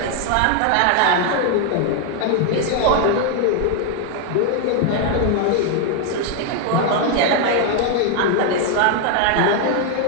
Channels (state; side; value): different; both; correlation 0.00